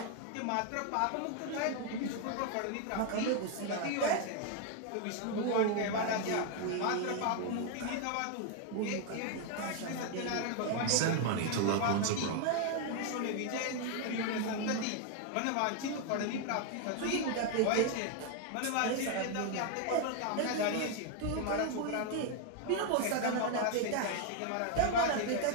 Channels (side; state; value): both; different; correlation 0.00